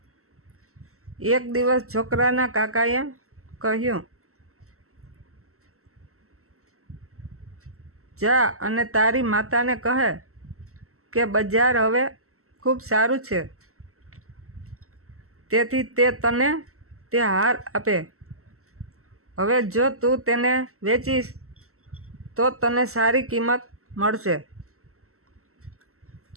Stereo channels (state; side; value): late; left; 0.63 ms